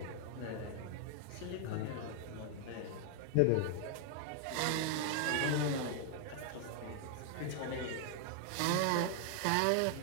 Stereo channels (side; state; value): both; different; correlation 0.00